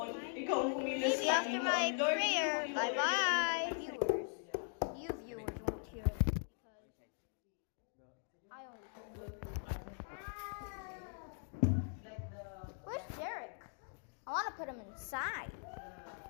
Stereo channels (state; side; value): silent; right; 51 dB below the other